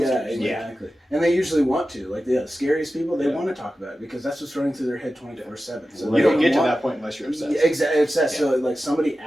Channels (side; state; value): both; normal; correlation 0.94